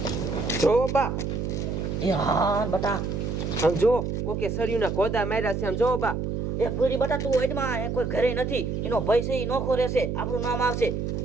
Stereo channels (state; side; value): noise; right; hum, 2 dB below the sound